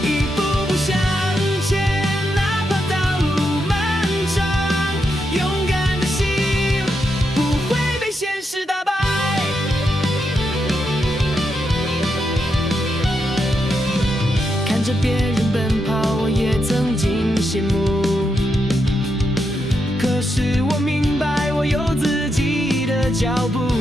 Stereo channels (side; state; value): both; normal; correlation 0.83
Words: 一步步向前，哪怕道路漫长。勇敢的心不会被现实打败。看着别人奔跑，我也曾经羡慕，可是我明白我有自己的脚步。